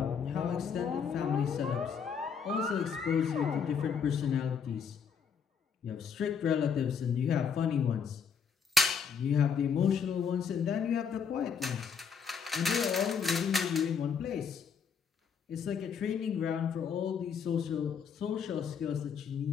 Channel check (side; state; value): right; quieter; 6.6 dB